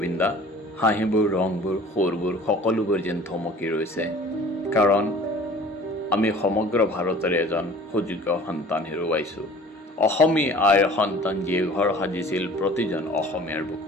হাঁহিবোৰ ৰংবোৰ সুৰবোৰ সকলোবোৰ যেন থমকি ৰৈছে কাৰণ আমি সমগ্ৰ ভাৰতৰে এজন সুযোগ্য সন্তান হেৰুৱাইছোঁ অসমীয়া আইৰ সন্তান যিয়ে ঘৰ সাজিছিল প্ৰতিজন অসমীয়াৰ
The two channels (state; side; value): normal; both; correlation 0.47